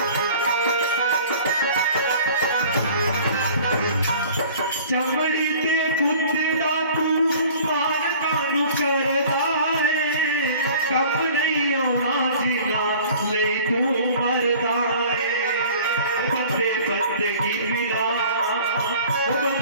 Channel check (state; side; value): inverted; both; correlation -0.47